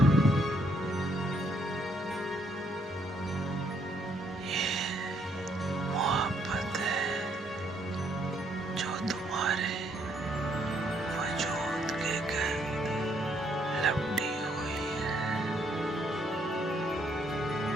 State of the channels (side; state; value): both; normal; correlation 0.70